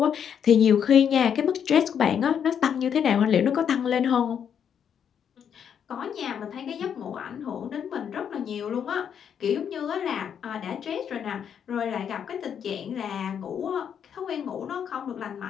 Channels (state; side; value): quieter; right; 8.1 dB